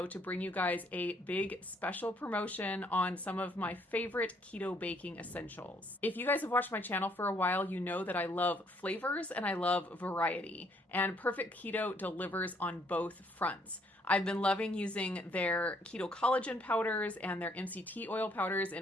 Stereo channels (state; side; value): normal; both; correlation 0.67